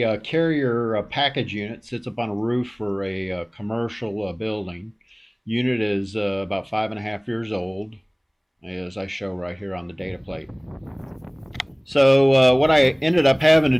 carrier package unit. Sits up on a roof for a commercial building. Unit is about 5.5 years old, as I show right here on the data plate. So what I ended up having to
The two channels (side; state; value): both; identical; correlation 1.00